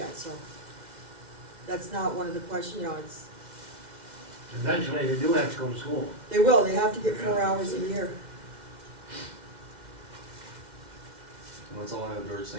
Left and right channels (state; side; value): late; left; 2.1 ms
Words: so. That's not one of the questions, it's, Eventually, they do have to go to school. they will, they have to get 4 hours a year. Well, that's all I have, George,